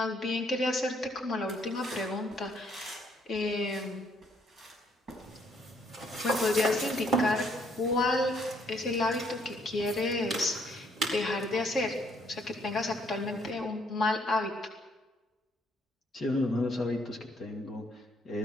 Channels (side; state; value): both; normal; correlation 0.68